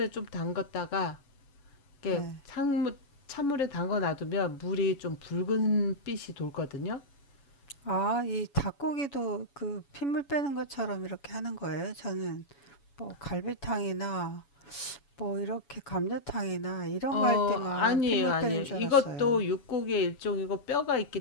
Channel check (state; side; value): late; right; 7.1 ms